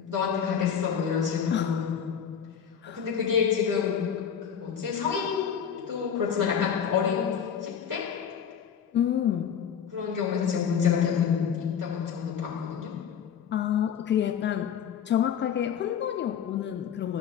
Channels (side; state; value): right; quieter; 7.9 dB